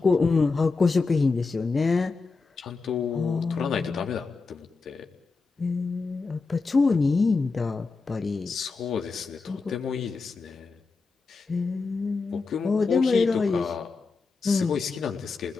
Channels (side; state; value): right; quieter; 4.3 dB